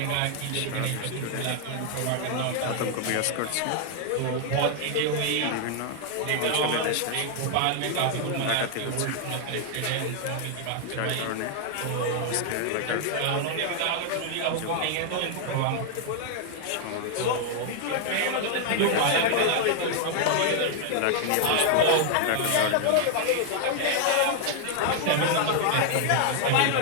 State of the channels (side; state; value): both; different; correlation 0.00